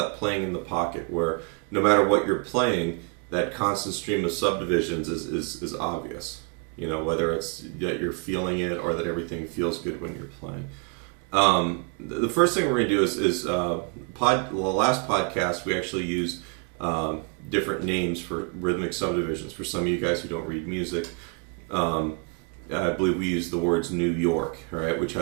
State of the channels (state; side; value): quieter; left; 33.8 dB